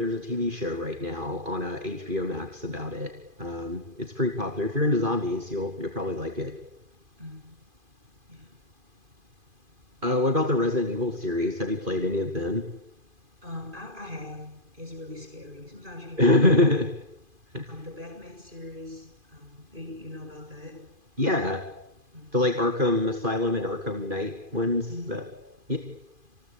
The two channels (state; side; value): late; left; 2.5 ms